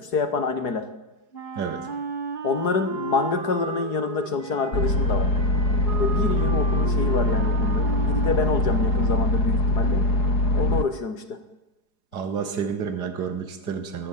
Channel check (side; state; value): right; late; 4.8 ms